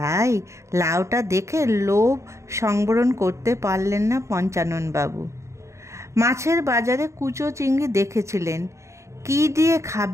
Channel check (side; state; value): left; late; 0.14 ms